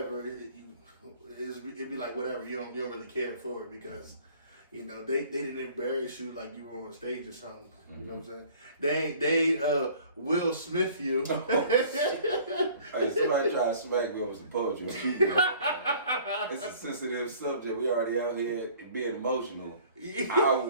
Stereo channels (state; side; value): inverted; both; correlation -0.52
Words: It'd be like whatever. You don't really care for it because, they didn't embarrass you like you were on stage or something. You know what I'm saying? They Will Smith you. Hey, somebody try to smack me over some poetry. It's a sensitive subject. We already out here being emotional. I